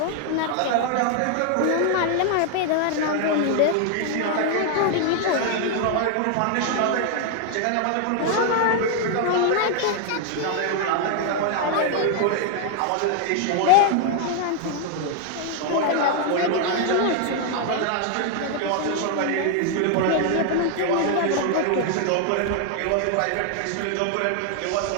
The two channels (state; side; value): different; both; correlation 0.00